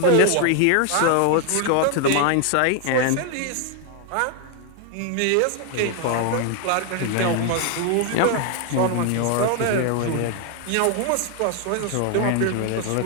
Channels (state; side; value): different; both; correlation 0.00